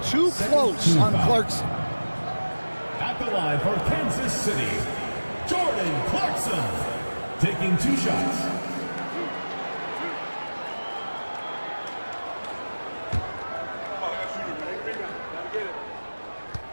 too close on Clarkson. At the line for Kansas City, Jordan Clarkson, taking 2 shots.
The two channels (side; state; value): both; inverted; correlation -1.00